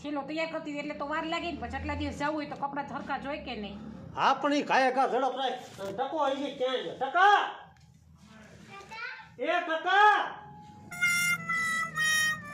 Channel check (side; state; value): both; identical; correlation 1.00